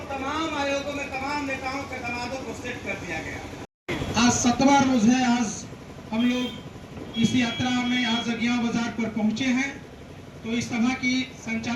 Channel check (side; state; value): both; identical; correlation 1.00